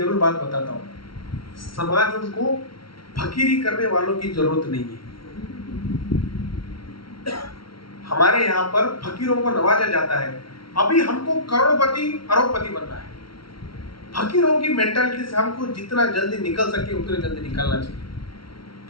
बात बताता हूँ, समाज उनको फकीरी करने वालों की जरूरत नहीं है। हमारे यहाँ पर फकीरों को नवाजा जाता है। अभी हमको करोड़पति अरबपति बनना है। फकीरों की मेंटालिटी से हमको जितना जल्दी निकल सके उतने जल्दी निकलना चाहिए।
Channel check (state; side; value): late; right; 0.74 ms